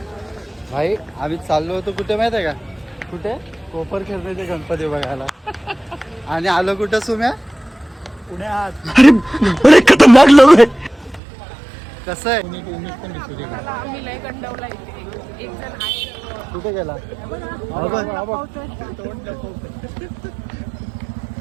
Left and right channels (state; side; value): drops out; left; at 11.2 s